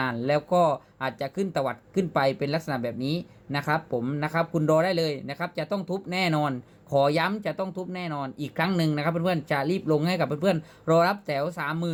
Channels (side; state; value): both; identical; correlation 1.00